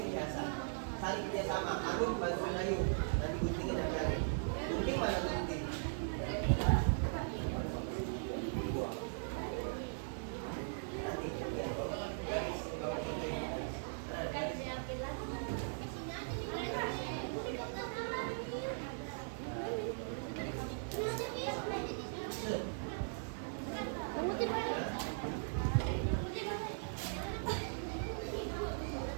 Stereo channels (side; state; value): left; silent; digital silence